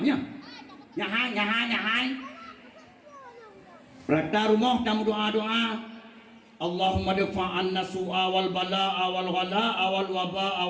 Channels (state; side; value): identical; both; correlation 1.00